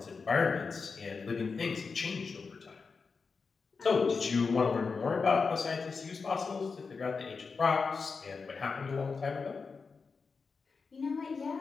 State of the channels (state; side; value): quieter; right; 4.9 dB